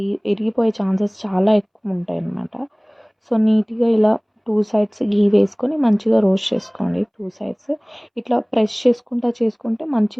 ఇరిగిపోయే ఛాన్సెస్ చాలా ఎక్కువ ఉంటాయన్నమాట. సో, నీట్‌గా ఇలా 2 సైడ్స్ ఘీ వేసుకొని మంచిగా రోస్ట్ చేసుకోండి 2 సైడ్స్. ఇట్లా ప్రెస్ చేసుకుంటే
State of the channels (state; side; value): identical; both; correlation 1.00